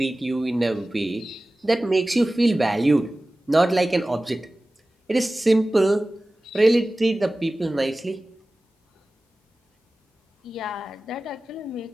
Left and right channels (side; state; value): both; normal; correlation 0.97